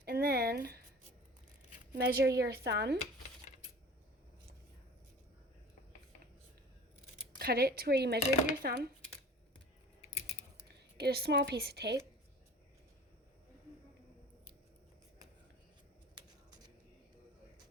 and then measure your thumb. Cut it to where you measured your thumb. Get a small piece of tape.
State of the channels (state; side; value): normal; both; correlation 0.42